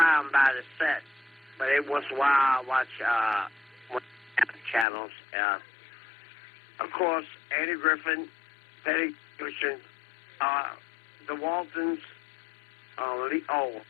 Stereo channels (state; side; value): drops out; right; at 4.9 s